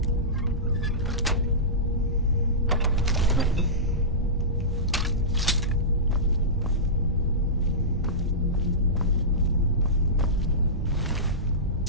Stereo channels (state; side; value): normal; both; correlation -0.18